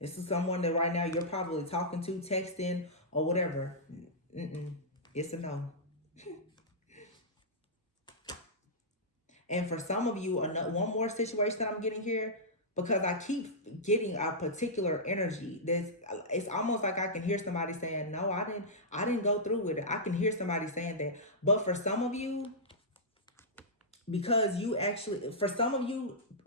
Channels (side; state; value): both; normal; correlation -0.12